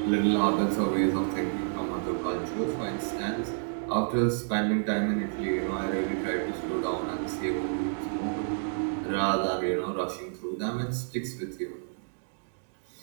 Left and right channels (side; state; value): left; silent; digital silence